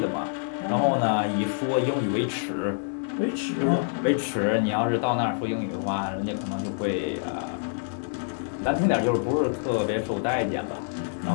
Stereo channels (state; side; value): silent; right; digital silence